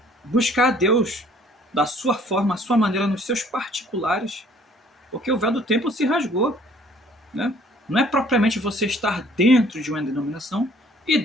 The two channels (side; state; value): both; normal; correlation 0.57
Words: buscar a Deus da sua forma, a sua maneira, nos seus particulares. Porque o véu do templo se rasgou. Né? Não é propriamente você estar dentro de uma denominação e